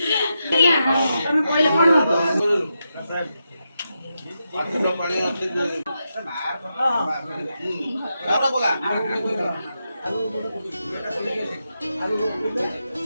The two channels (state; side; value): inverted; both; correlation -0.86